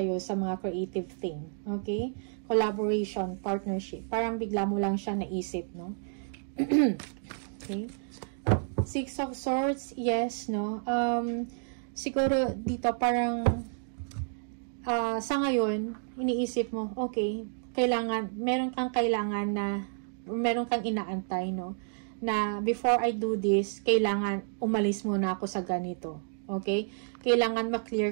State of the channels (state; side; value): silent; left; digital silence